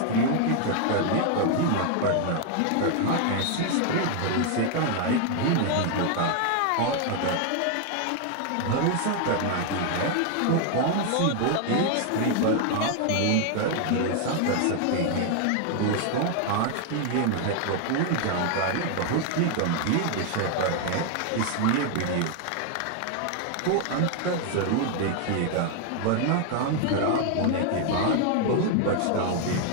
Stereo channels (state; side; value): different; both; correlation 0.00